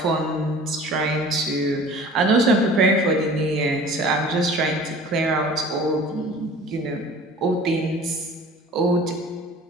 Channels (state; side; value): normal; both; correlation 0.44